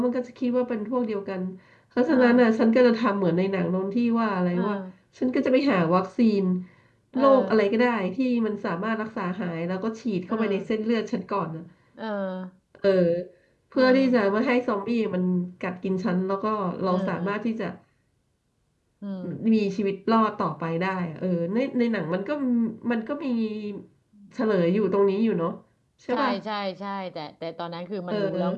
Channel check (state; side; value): identical; both; correlation 1.00